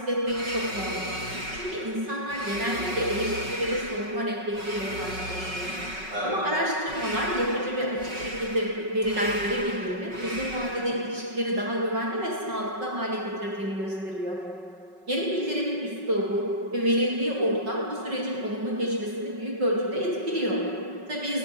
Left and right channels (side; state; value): left; late; 5.4 ms